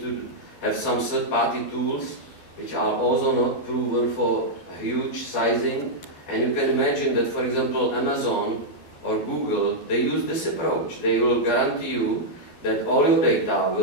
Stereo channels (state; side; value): late; right; 12 ms